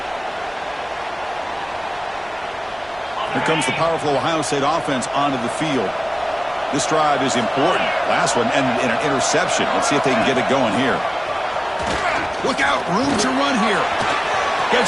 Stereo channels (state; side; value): noise; right; rumble, 27 dB below the sound